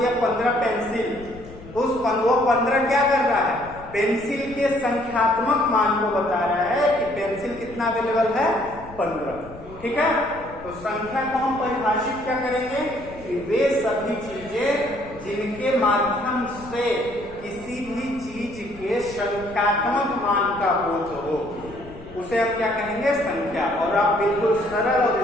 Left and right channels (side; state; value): left; noise; rumble, 18 dB below the sound